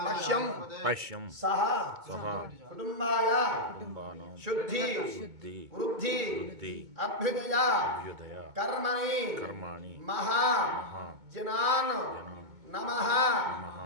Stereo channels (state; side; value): late; left; 2.2 ms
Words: पश्यं पश्यं सः सः कुटुम्बाय कुटुम्बानां शुद्धि शुद्धि वृद्धि वृद्धि अभ्युदय अभ्युदय कर्मणि कर्माणि महा महा जनान् जनान् नमः नमः